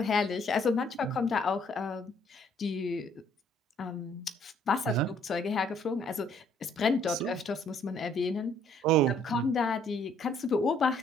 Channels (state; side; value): normal; both; correlation 0.64